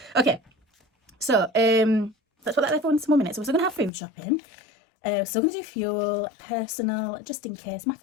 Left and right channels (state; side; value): drops out; right; at 3.9 s